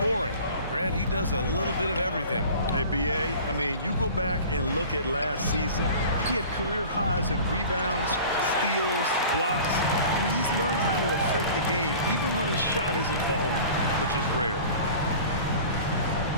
Grant, he does a little bit of everything. Hey, B.A., I mean, you go back and look at last season. He had career highs in rebounds, steals, blocks. I mean, he's learned how to affect the game, even when his shot isn't falling, which is rare.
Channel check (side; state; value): both; inverted; correlation -0.42